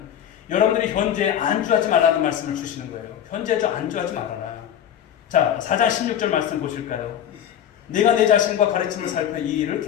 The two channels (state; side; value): quieter; right; 9.9 dB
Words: 여러분들이 현재에 안주하지 말라는 말씀을 주시는 거예요. 현재에 안주하지 말아라. 자, 4장 16절 말씀 보실까요? 내가 내 자신과 가르침을 살펴 이 일을